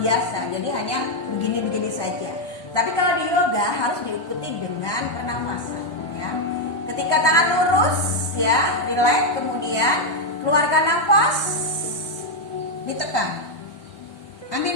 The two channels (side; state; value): right; late; 1.2 ms